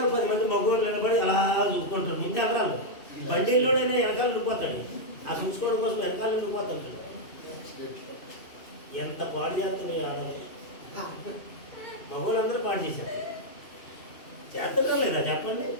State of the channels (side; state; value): right; late; 2.7 ms